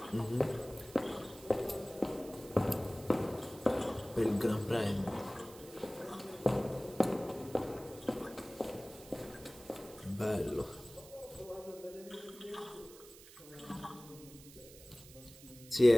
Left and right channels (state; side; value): noise; right; hiss, 19 dB below the sound